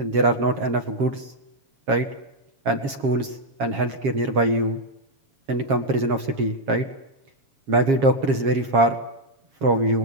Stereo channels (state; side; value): late; left; 7.4 ms